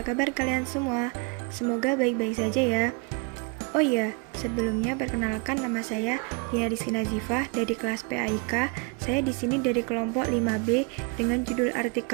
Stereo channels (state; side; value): quieter; left; 32.1 dB